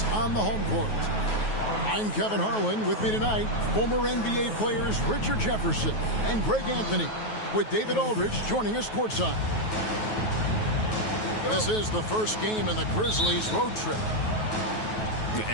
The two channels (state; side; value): late; right; 9.3 ms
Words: on the home court. I'm Kevin Harlan. With me tonight, former NBA players Richard Jefferson and Greg Anthony, with David Aldridge joining us courtside. This is the first game in the Grizzlies' road trip.